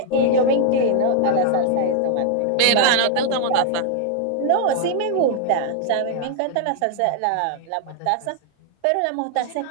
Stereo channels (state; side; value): different; both; correlation 0.00